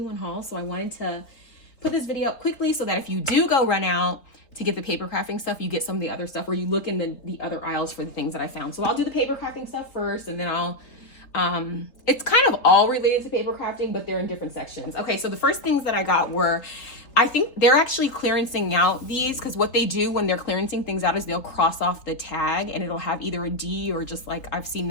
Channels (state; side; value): late; right; 3.8 ms